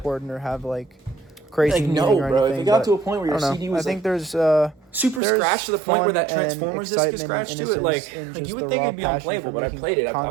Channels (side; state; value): left; drops out; at 5.2 s